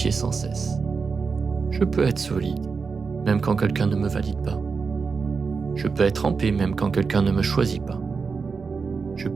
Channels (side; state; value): left; quieter; 5.0 dB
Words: sans cesse. Je peux être solide, même quand quelqu'un ne me valide pas. Je peux être en paix, même quand quelqu'un ne me choisit pas. Je